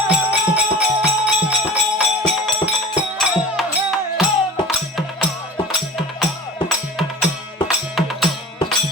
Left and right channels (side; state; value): both; normal; correlation 0.38